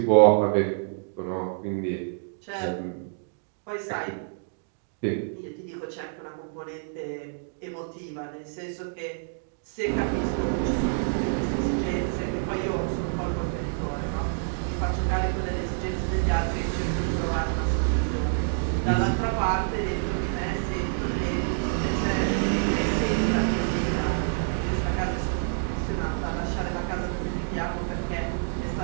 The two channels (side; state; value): left; silent; digital silence